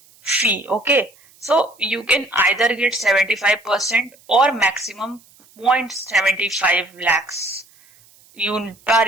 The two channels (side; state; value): right; noise; hiss, 29 dB below the sound